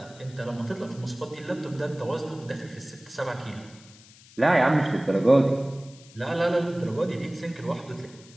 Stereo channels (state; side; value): noise; left; hiss, 23 dB below the sound